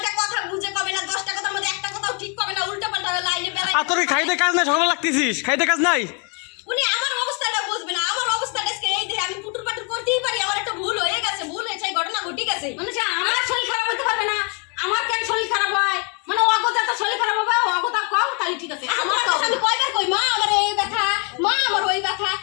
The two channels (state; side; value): quieter; right; 35.3 dB